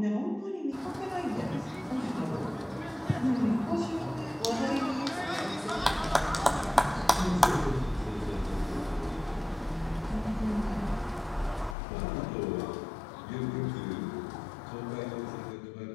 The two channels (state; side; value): drops out; right; at 11.8 s